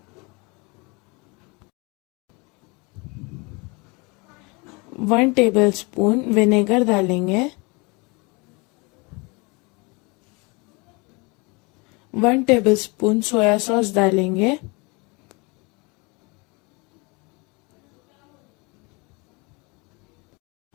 1 टेबलस्पून विनेगर डालेंगे, 1 टेबलस्पून सोया सॉस डालेंगे,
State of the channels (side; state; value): right; quieter; 28.3 dB